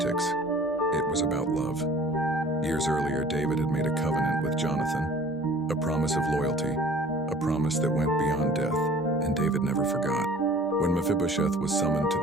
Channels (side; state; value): both; normal; correlation 0.49